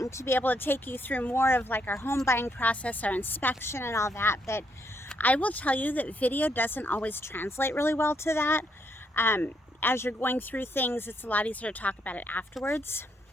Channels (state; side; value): normal; both; correlation 0.75